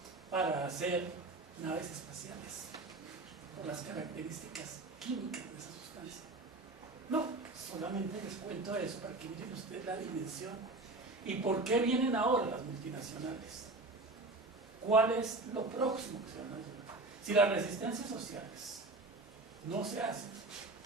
para hacer naves espaciales por las características químicas de esa sustancia. No, solamente les cuento eso para que miren ustedes la dimensión y por qué vienen ahora las multinacionales. ¿Cuál es lo próximo que se van a llevar? Si las resistencias sociales no se hacen,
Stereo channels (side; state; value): left; quieter; 3.1 dB